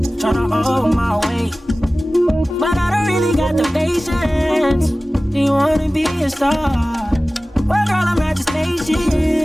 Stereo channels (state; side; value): normal; both; correlation 0.97